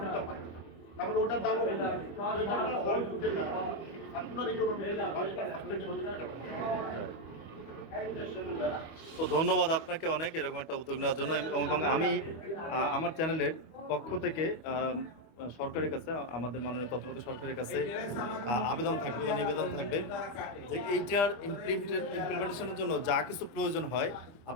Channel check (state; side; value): late; right; 25 ms